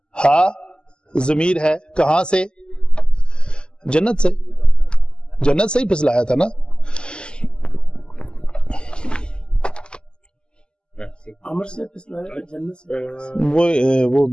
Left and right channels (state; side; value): late; right; 0.049 ms